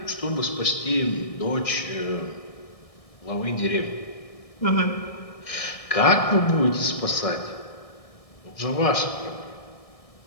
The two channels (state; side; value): late; right; 1.6 ms